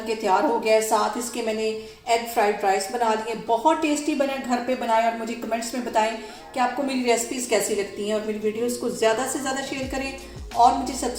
के तैयार हो गया है। साथ इसके मैंने एग फ्राइड राइस बना लिए, बहुत टेस्टी बने, घर पे बनाएं और मुझे कमेंट्स में बताएं कि आपको मेरी रेसिपीज़ कैसी लगती हैं। और मेरी वीडियोस को ज़्यादा से ज़्यादा शेयर करें और मुझे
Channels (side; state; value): both; identical; correlation 1.00